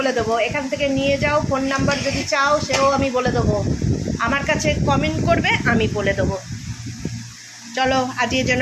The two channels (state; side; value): identical; both; correlation 1.00